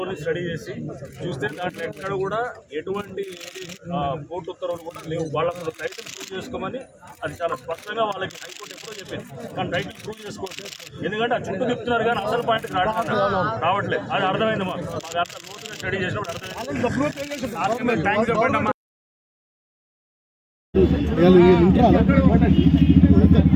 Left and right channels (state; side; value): identical; both; correlation 1.00